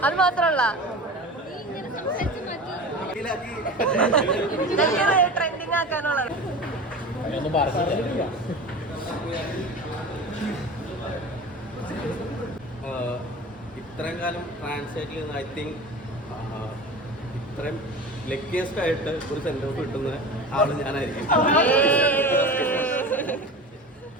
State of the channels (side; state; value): both; normal; correlation 0.33